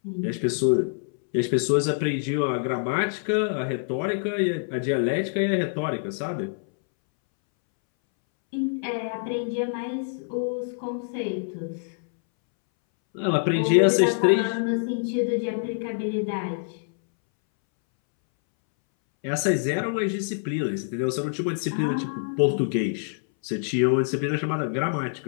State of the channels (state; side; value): silent; right; 61 dB below the other